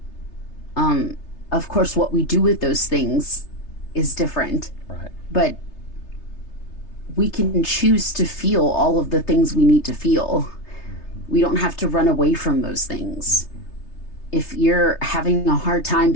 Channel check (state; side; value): late; right; 3.3 ms